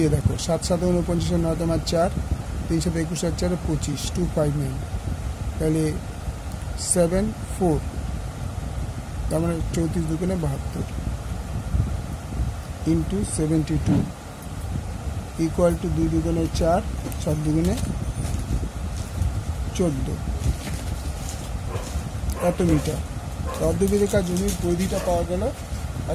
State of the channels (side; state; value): both; identical; correlation 1.00